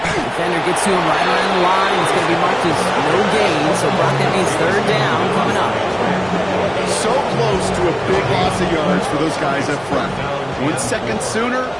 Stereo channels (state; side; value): noise; right; hum, 23 dB below the sound